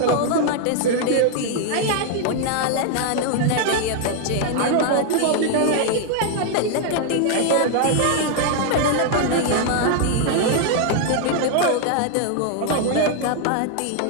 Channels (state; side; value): different; both; correlation 0.00